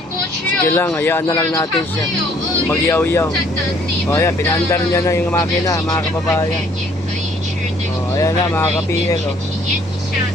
過去哦。 Sige lang, hayaan na lang natin siya. Magyaw-yaw. O ayan, pinaandar niya na yung makina, mga kababayan. O ayan na, mga ka-PL. O.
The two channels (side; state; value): both; normal; correlation 0.61